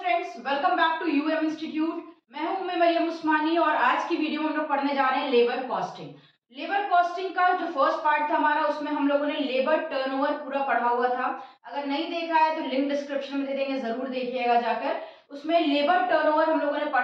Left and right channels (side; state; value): both; identical; correlation 1.00